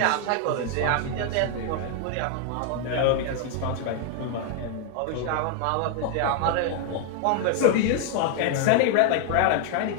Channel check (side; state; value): both; different; correlation 0.00